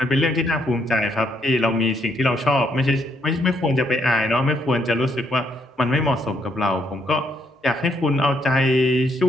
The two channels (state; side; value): normal; both; correlation 0.73